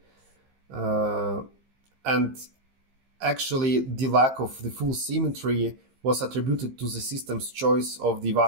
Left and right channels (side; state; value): left; late; 15 ms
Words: and actually the lack of the full symmetry was attributed to the system's choice of the